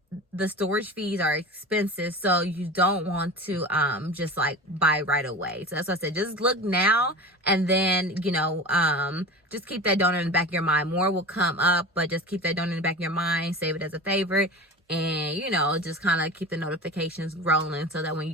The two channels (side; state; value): both; normal; correlation 0.32